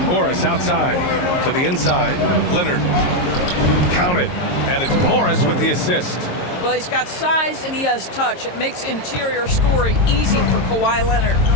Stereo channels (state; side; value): late; right; 22 ms